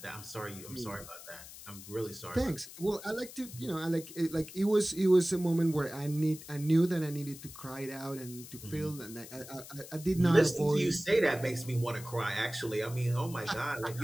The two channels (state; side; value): noise; left; hiss, 15 dB below the sound